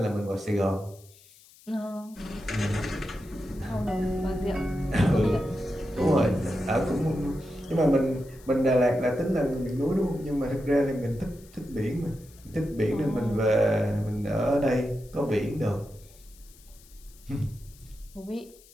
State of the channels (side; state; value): left; noise; hiss, 25 dB below the sound